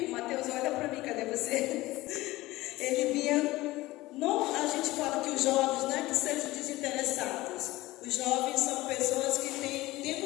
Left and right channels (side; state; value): right; quieter; 18.6 dB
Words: O Mateus, olha para mim, cadê você? Ele vinha. Não, a gente fala que os jovens não é que sejam desinteressados. Os jovens são pessoas que